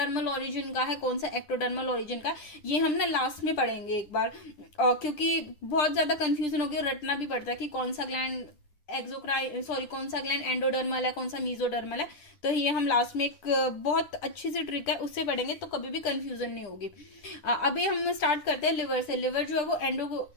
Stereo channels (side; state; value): right; late; 9.8 ms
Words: ओरिजिन का है, कौन सा एक्टोडर्मल ओरिजिन का, ये हम ना लास्ट में पढ़ेंगे एक बार, क्योंकि बहुत ज्यादा कंफ्यूजन हो गया, रटना भी पड़ता है कि कौन सा ग्लैंड एक्सोक्राइन, सॉरी कौन सा ग्लैंड एंडोडर्मल है, कौन सा मीजोडर्मल है। तो ये हम लास्ट में एक बहुत अच्छी सी ट्रिक है उससे पढ़ेंगे, तो कभी भी कंफ्यूजन नहीं होगी। अभी हम स्टार्ट करते हैं लिवर से। लिवर जो है वो